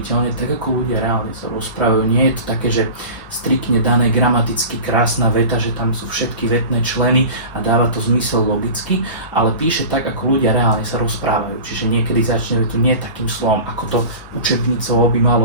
tak ako ľudia reálne sa rozprávajú. Nie je to také, že striktne dané gramaticky krásna veta, že tam sú všetky vetné členy a dáva to zmysel logicky, ale píše tak, ako ľudia reálne sa rozprávajú. Čiže niekedy začne vetu nie takým slovom, ako to učebnicovo by malo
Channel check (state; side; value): inverted; both; correlation -0.35